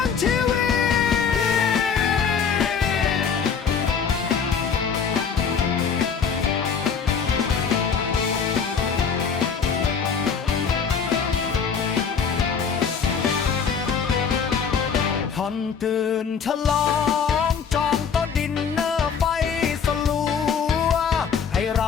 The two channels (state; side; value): quieter; right; 6.4 dB